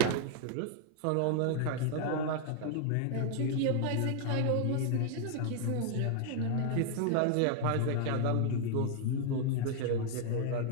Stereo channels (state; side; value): different; both; correlation 0.00